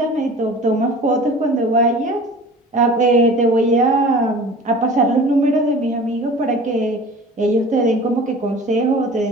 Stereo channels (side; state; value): both; normal; correlation 0.42